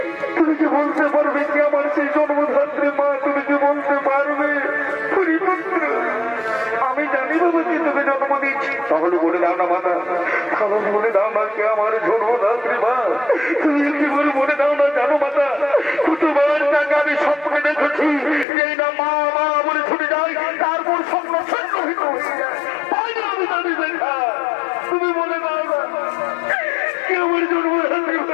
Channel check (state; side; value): drops out; right; at 18.4 s